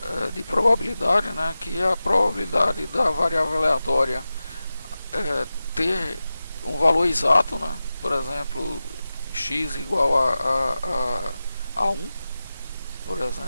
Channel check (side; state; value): both; inverted; correlation -0.94